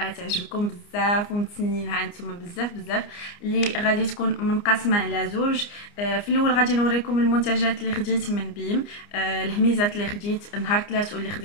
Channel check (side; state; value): right; late; 29 ms